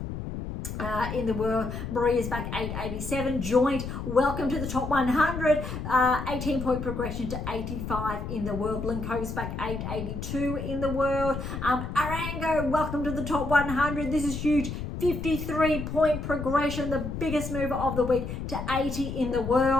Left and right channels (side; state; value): left; noise; rumble, 6 dB below the sound